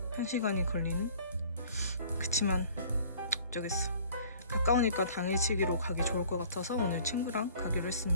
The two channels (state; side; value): inverted; both; correlation -0.51